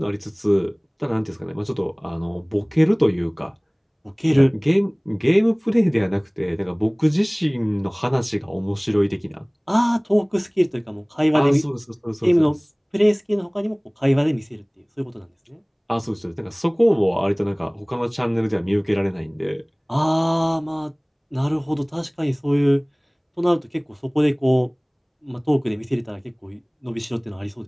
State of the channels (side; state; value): both; identical; correlation 1.00